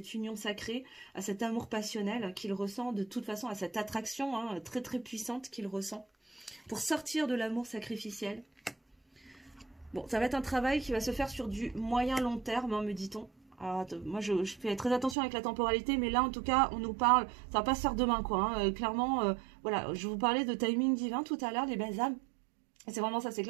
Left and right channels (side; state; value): left; drops out; at 15.2 s